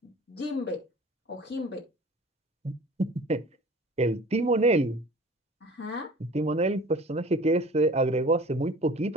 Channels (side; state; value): both; normal; correlation 0.44